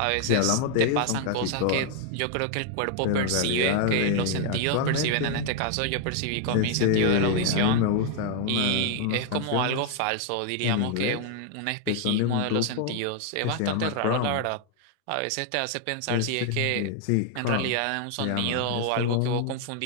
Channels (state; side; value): different; both; correlation 0.00